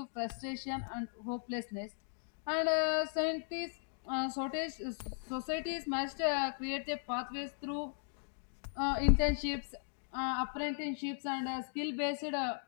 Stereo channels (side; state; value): right; silent; digital silence